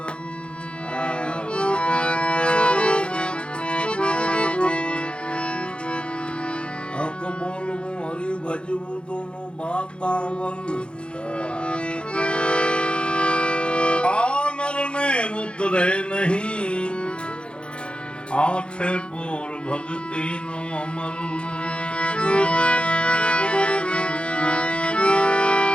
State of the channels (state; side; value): late; right; 0.056 ms